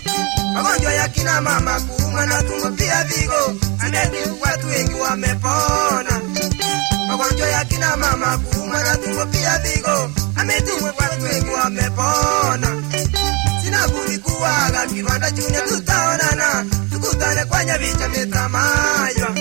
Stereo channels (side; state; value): left; quieter; 30.0 dB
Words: Magonjwa ya kina mama, kuumwa na tumbo, pia vigo, ameti watu wengi wamepona. Magonjwa ya kina mama, kuumwa na tumbo, pia vigo, ameti watu wengi wamepona. Sina budi kuaga Kiwanda Junior, tutaonana tukutane kwa Nyabicha Metamaywa.